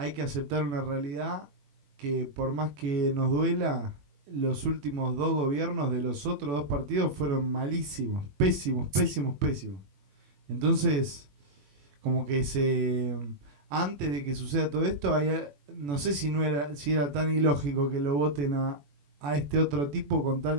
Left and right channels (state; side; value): late; left; 21 ms